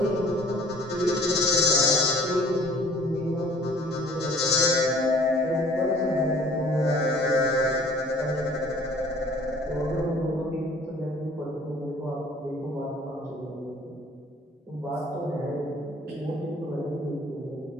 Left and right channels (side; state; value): both; normal; correlation 0.52